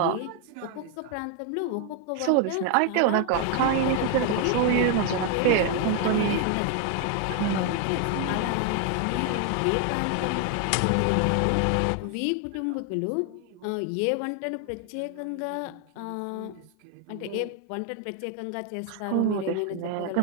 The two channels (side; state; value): both; different; correlation 0.00